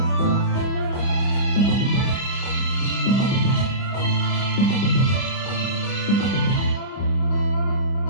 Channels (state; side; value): late; right; 30 ms